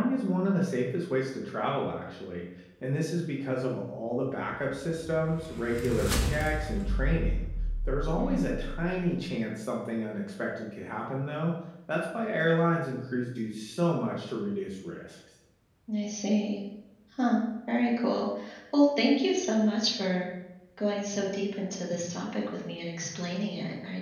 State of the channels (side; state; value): both; identical; correlation 1.00